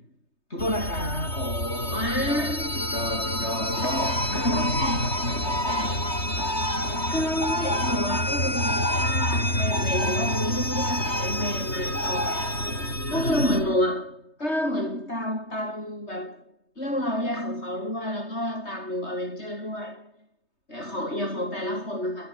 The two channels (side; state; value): right; late; 3.2 ms